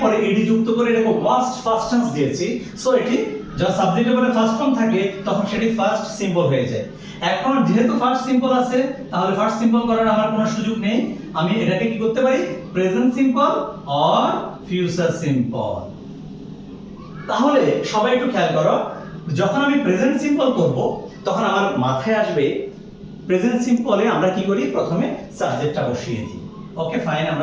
পরে এডি যুক্ত করে এটাকে ওয়াচড ফার্স্ট টেন্স দিয়েছি। সো এটি যখন সাবজেক্টের পরে ফার্স্ট ফর্ম থাকে তখন সেটি ফার্স্ট সিম্পল হয়ে যায়। এখন যেহেতু ফার্স্ট সিম্পল আছে, তাহলে ফার্স্ট সিম্পল করার আমার কোনো সুযোগ নেই। আমি এটাকে কি করতে পারি? Present simple or future simple. তাহলে সবাই একটু খেয়াল করো, যখন আমি প্রেজেন্ট সিম্পল করব তখন আমার মাথায় আসবে প্রেজেন্ট সিম্পলে আমরা কি করি? প্রথমে সাবজেক্টটা বসিয়ে দিই। ওকে ফাইন,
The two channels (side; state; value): both; identical; correlation 1.00